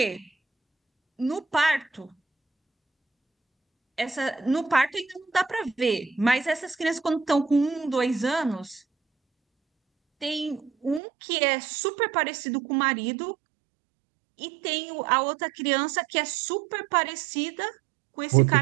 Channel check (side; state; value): left; drops out; at 11.0 s